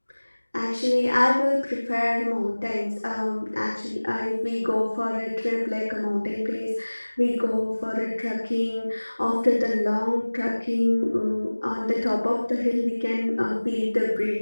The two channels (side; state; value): both; inverted; correlation -1.00